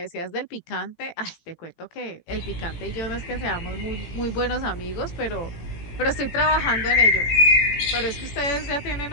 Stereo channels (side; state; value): right; late; 17 ms